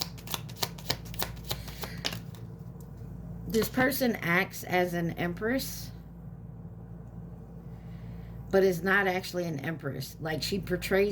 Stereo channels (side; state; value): both; identical; correlation 1.00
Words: This person acts as an Empress, but is not actually an Empress. Like, she